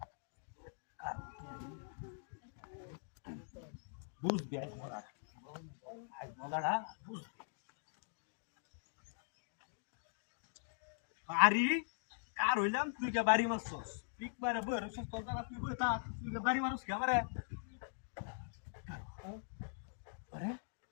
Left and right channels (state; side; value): silent; right; digital silence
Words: বুঝবি আজ মজাটা বুঝবি আরে কার হইলাম তুই কে বাড়ি মারছস পিক মারে বই রছস তোর জায়গা তুই বই তা তুই কে বাড়ি মারছস কে আমারে আরে